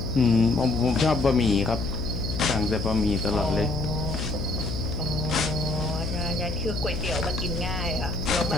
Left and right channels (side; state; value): left; noise; hum, 4 dB below the sound